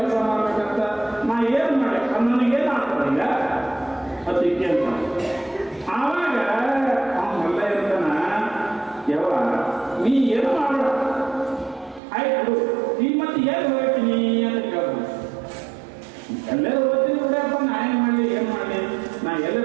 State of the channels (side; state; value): left; drops out; at 12.0 s